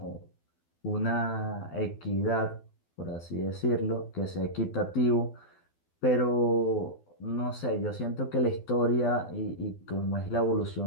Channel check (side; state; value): right; late; 12 ms